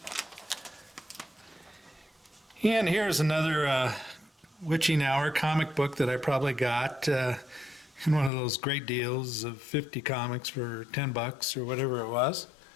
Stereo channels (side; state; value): right; drops out; at 8.3 s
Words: And here's another Witching Hour comic book that I probably got in one of those great deals of 50 comics for 10 bucks or whatever it was.